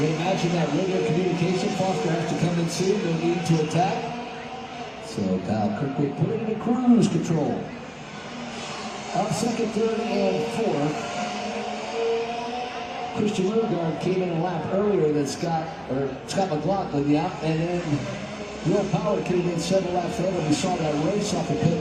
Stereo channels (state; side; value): identical; both; correlation 1.00